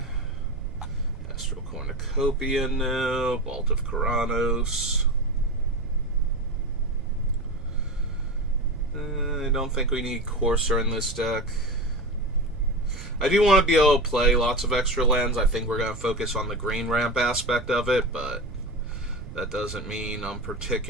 Astral Cornucopia now. Vault of Keranos. I don't think we need Courser in this deck. I do want to be able to play lots of extra lands. I think we're going to focus on the green ramp aspect of it, but that doesn't mean I'm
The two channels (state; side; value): noise; right; rumble, 12 dB below the sound